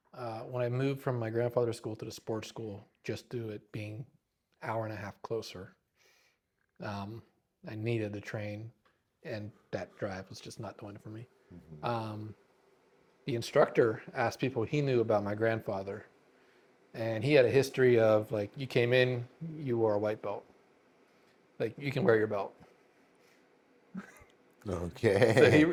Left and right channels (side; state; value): both; identical; correlation 1.00